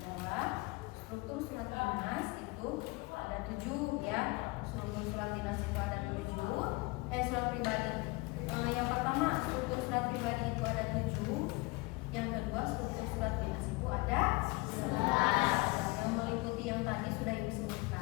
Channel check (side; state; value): right; quieter; 24.2 dB